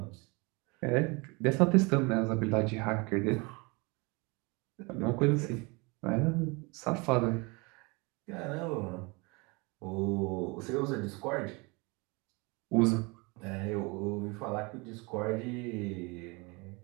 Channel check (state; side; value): quieter; left; 28.1 dB